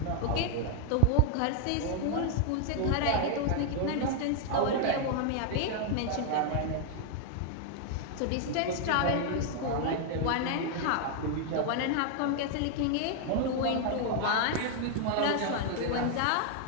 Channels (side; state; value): both; different; correlation 0.00